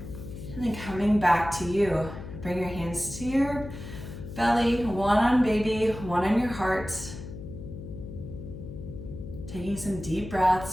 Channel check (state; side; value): noise; left; hum, 11 dB below the sound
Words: and then coming back to you. Bring your hands to your belly, one on baby, one on your heart. Taking some deep